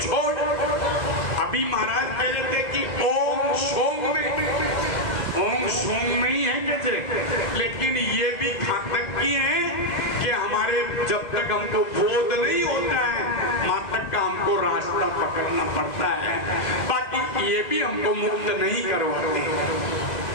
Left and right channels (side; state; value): right; late; 2.0 ms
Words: छोड़। अभी महाराज कह रहे थे कि ओम सोम में ही है कैसे, लेकिन ये भी घातक की है कि हमारे जब तक हमको बोध नहीं होता है वहां तक का हमको रास्ता पकड़ना पड़ता है, बाकी ये भी हमको मुक्त नहीं करवाते।